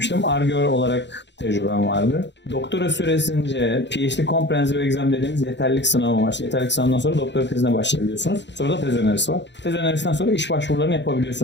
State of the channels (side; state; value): right; late; 0.52 ms